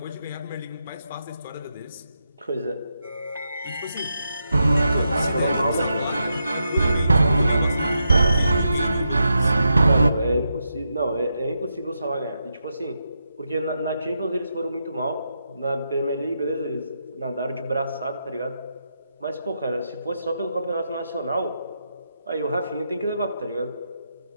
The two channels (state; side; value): inverted; both; correlation -0.84